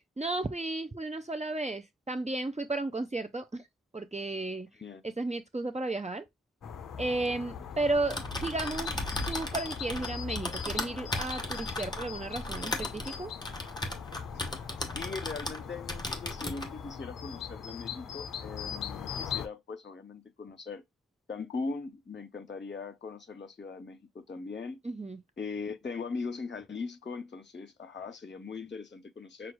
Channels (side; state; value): both; normal; correlation 0.66